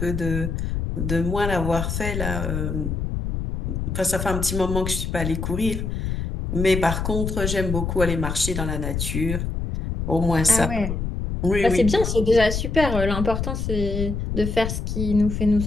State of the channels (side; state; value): left; noise; rumble, 3 dB below the sound